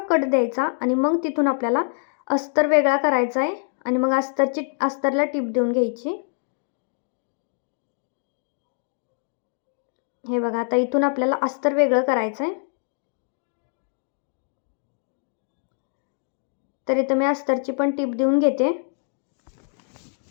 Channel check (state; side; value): silent; right; 62 dB below the other